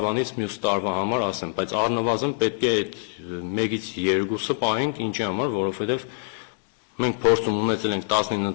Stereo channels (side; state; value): right; silent; digital silence